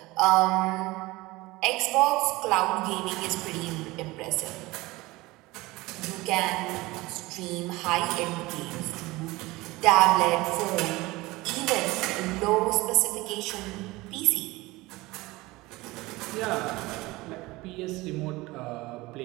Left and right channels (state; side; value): quieter; left; 20.7 dB